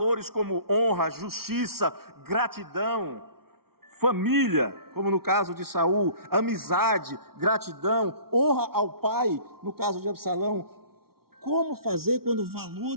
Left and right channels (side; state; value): left; late; 0.94 ms